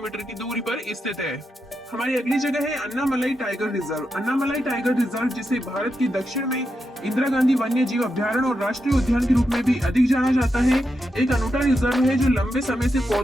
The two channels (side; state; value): both; normal; correlation 0.86